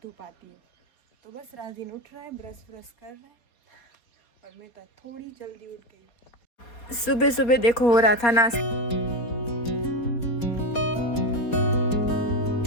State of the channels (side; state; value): right; late; 4.2 ms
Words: धूप आती है। तो बस राजीन उठ रहा है, ब्रश कर रहा है और मैं तो थोड़ी जल्दी उठ गई। सुबह सुबह देखो हो रहा था नाश्ता।